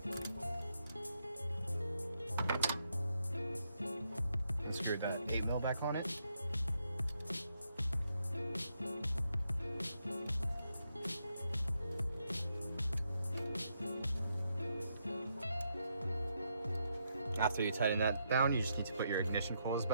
And screw that 8 mil back on it. After you tighten that down, you just need to put your ignition coils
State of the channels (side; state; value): both; inverted; correlation -0.80